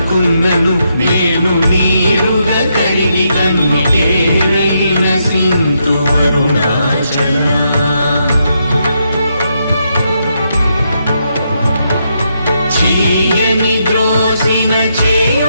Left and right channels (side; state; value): both; inverted; correlation -0.80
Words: నేను నీరుగ కరిగి కన్నికేరైన సింధు అరుణాచల చీయని ద్రోసిన చేయు